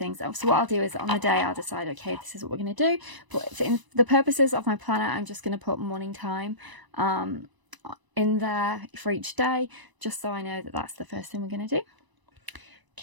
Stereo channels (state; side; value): late; left; 1.0 ms